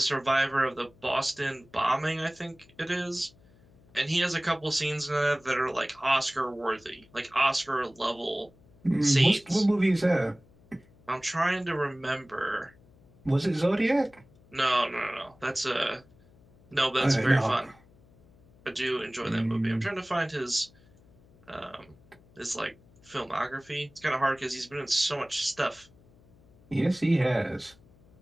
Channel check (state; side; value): noise; left; hum, 28 dB below the sound